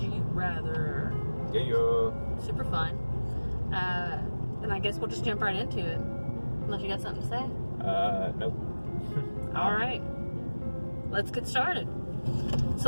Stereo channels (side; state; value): both; inverted; correlation -1.00